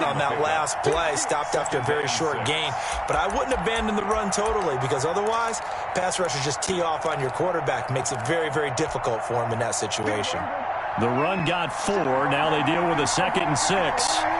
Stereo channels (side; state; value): both; identical; correlation 1.00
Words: on that last play. Stopped after a very short gain. But I wouldn't abandon the run totally, because otherwise, pass rushers just tee off on your quarterback. Makes it very, very difficult for him in that situation. The run got 4. Now they deal with a 2nd and 6.